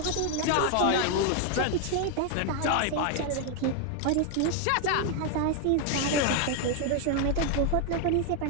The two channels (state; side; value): different; both; correlation 0.01